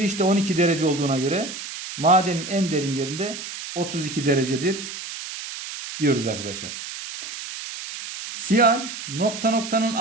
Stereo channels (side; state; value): right; noise; hiss, 9 dB below the sound